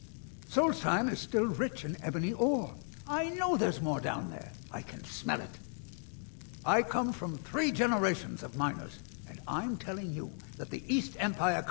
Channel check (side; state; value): right; silent; 54 dB below the other